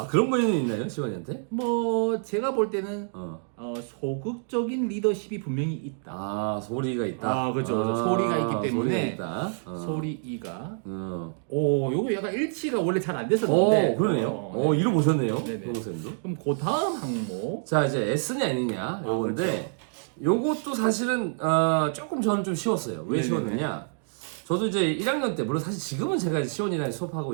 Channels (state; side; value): silent; left; digital silence